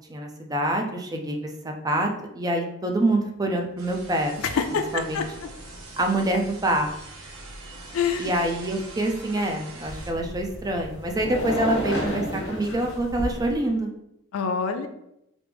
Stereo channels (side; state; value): both; normal; correlation 0.41